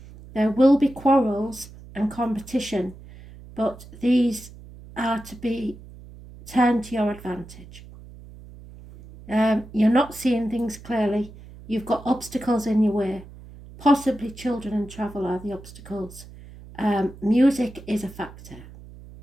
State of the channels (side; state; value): right; noise; hum, 18 dB below the sound